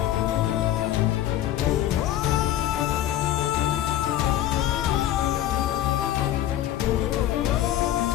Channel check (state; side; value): quieter; right; 12.7 dB